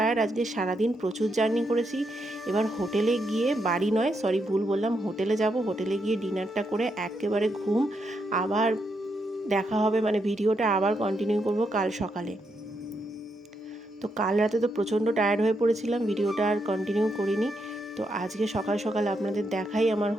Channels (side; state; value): both; normal; correlation 0.80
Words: আজকে সারাদিন প্রচুর জার্নি করেছি। এবার হোটেলে গিয়ে, বাড়ি নয় সরি ভুল বললাম, হোটেলে যাব। হোটেলে গিয়ে ডিনারটা করে একেবারে ঘুম। আবার দেখা হবে, মানে ভিডিওটা আবার কন্টিনিউ করব কাল সকালে। তো কাল রাতে তো প্রচণ্ড টায়ার্ড হয়ে পড়েছিলাম, ভিডিওটা আর কন্টিনিউ করিনি। তো আজকে সকাল সকাল আপনাদের দেখাই আমার